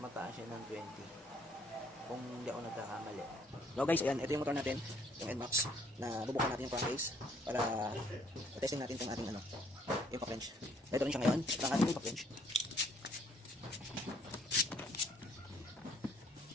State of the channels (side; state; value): both; normal; correlation 0.64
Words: siya ng 20 kung hindi ako nagkakamali. So guys, ayan, ito yung motor natin, yung NMAX, na bubukan natin yung crankcase para testing natin kung ating impact wrench. Ito rin siya ngayon, ang ating impact wrench.